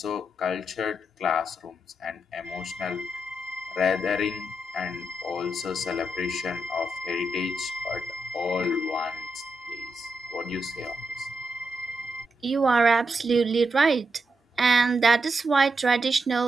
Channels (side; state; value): both; normal; correlation 0.84